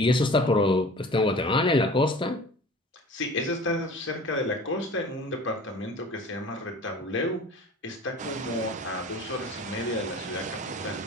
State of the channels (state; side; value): normal; both; correlation 0.42